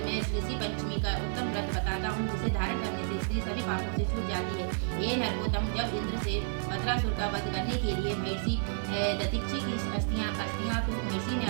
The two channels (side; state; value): left; silent; 57 dB below the other